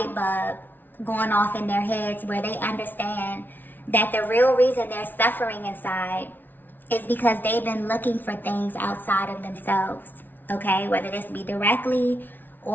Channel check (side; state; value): right; late; 0.089 ms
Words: bulb going off in their heads where they understand that the real reason they're suffering inside is because they've been looking for things outside of themselves, okay? Whether this be directly